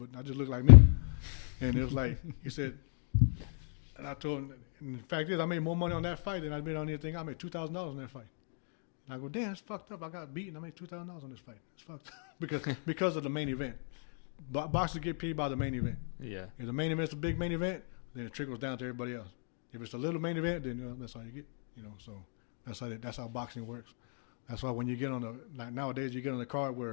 I just looked like me. And it was like, he said, And I told him, and the fact is, I made more money on that fight than I made on anything. I made $2,000 on that fight. And I go, damn, it's fucked up. I got beaten. I made $2,000 on this fight. It's fucked up because of the main event. Boxers get paid by the main event. Yeah. If the main event's a big main event, then it trickles down to everybody else. If it's a little main event, then that's all you get. So that's how boxing works. That's why when you get on nowadays you get on the card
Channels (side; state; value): right; silent; 54 dB below the other